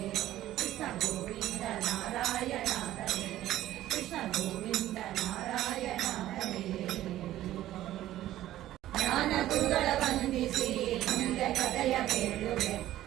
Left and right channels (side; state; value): left; quieter; 14.0 dB